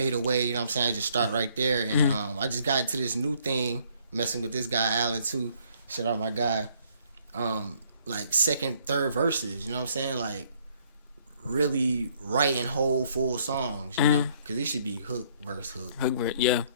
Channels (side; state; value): both; inverted; correlation -0.64